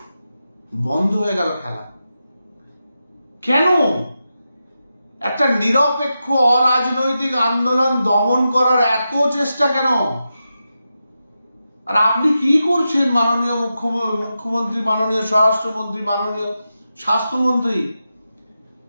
বন্ধ হয়ে গেল খেলা। কেন? একটা নিরপেক্ষ অরাজনৈতিক আন্দোলন দমন করার এত চেষ্টা কেন? আর আপনি কি করছেন মাননীয় মুখ্যমন্ত্রী, মাননীয় স্বরাষ্ট্রমন্ত্রী, মাননীয় স্বাস্থ্যমন্ত্রী?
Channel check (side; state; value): both; inverted; correlation -0.89